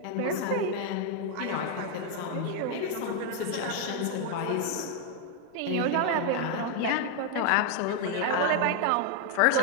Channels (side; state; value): both; different; correlation 0.01